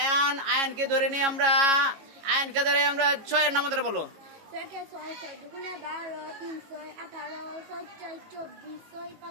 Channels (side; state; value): left; late; 18 ms